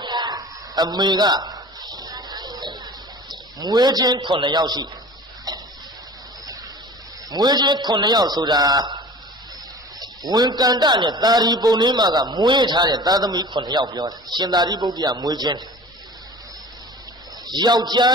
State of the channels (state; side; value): normal; both; correlation 0.41